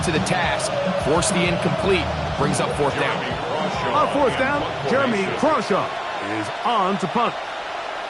to the task. Forced the incomplete, brings up 4th down. On 4th down, Jeremy Crawshaw is on to punt.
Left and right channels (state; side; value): identical; both; correlation 1.00